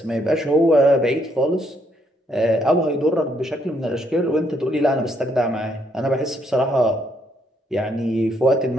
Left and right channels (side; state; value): both; normal; correlation 0.72